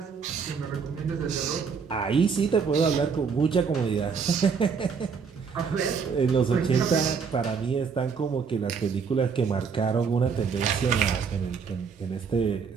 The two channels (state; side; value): quieter; left; 5.9 dB